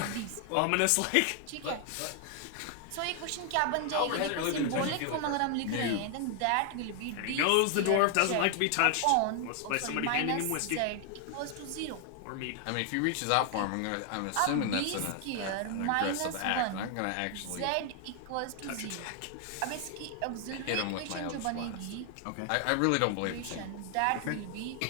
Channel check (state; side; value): different; both; correlation 0.00